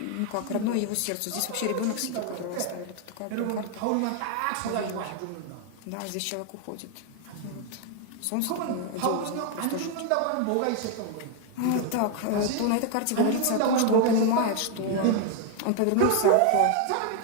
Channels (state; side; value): different; both; correlation 0.00